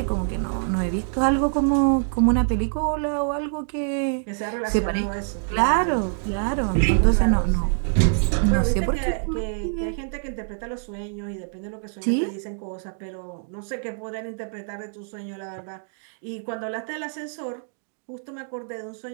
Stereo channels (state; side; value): silent; left; digital silence